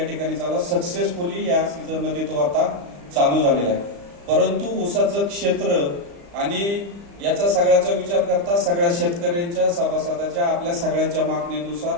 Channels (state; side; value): late; left; 35 ms